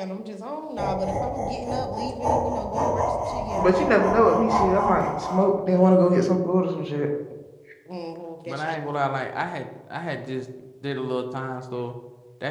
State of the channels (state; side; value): identical; both; correlation 1.00